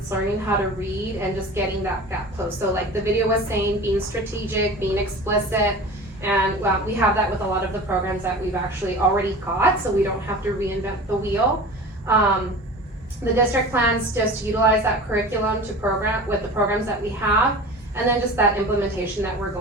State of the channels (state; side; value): normal; both; correlation 0.36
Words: learning how to read and just getting that gap closed. So the video was saying, being strategic, being explicit, and we have that with a lot of the programs that we've actually already got, so we don't have to reinvent the wheel. The district plans just to utilize that curriculum to program with the programs that we have, and then just that implementation that we're